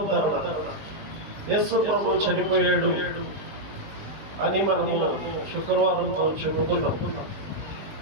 యేసు ప్రభు చనిపోయాడు అని మనము శుక్రవారంతో చెప్పుకున్నాం.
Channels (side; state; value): left; late; 20 ms